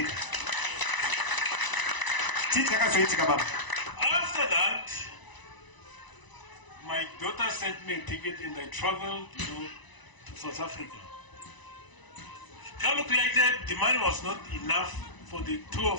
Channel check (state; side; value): late; right; 1.0 ms